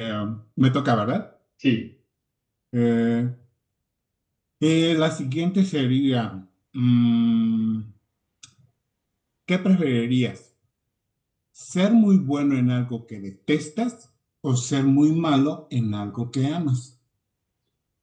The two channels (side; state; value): both; identical; correlation 1.00